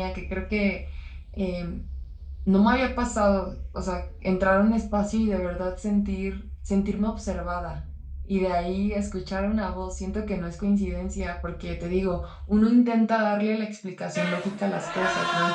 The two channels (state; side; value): identical; both; correlation 1.00